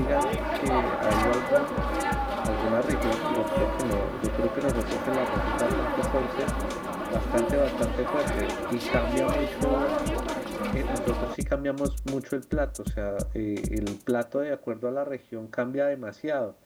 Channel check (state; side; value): identical; both; correlation 1.00